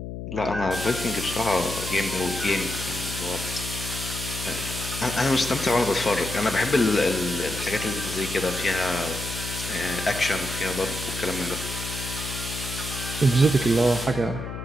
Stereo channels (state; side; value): noise; left; hum, 7 dB below the sound